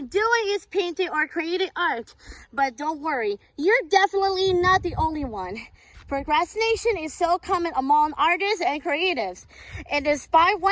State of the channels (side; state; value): both; identical; correlation 1.00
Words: doing is painting or creating art. But don't worry, you're definitely not the only one. Procrastination is so common among artists and creatives. And despite